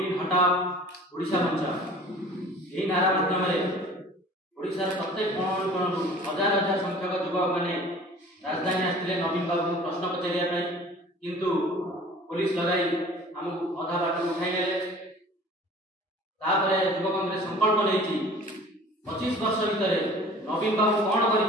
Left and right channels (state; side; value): normal; both; correlation 0.46